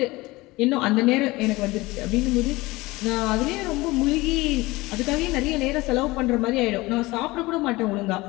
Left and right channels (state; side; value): quieter; right; 21.1 dB